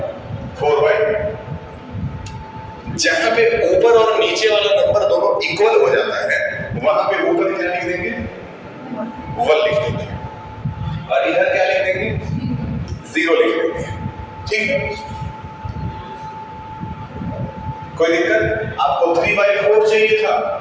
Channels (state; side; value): identical; both; correlation 1.00